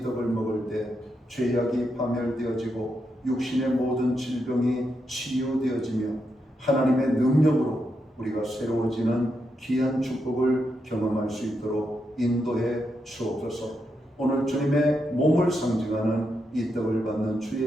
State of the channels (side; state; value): both; normal; correlation 0.83